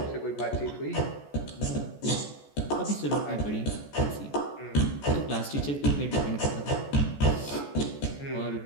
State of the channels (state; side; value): late; right; 14 ms